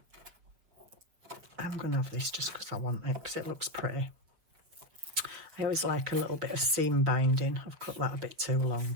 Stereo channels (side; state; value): left; late; 6.2 ms